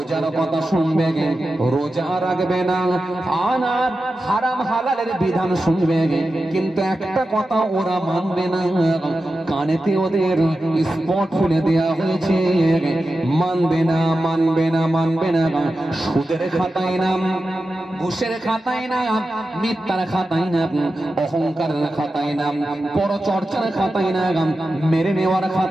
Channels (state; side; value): normal; both; correlation 0.92